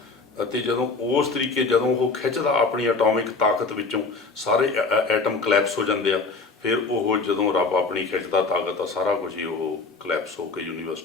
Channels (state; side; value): quieter; right; 4.1 dB